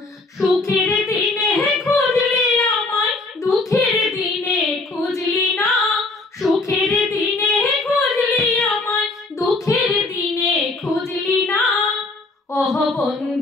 সুখের দিনে খুঁজলি আমায়, দুঃখের দিনে খুঁজলি না। সুখের দিনে খুঁজলি আমায়, দুঃখের দিনে খুঁজলি না। ও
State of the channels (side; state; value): right; quieter; 3.3 dB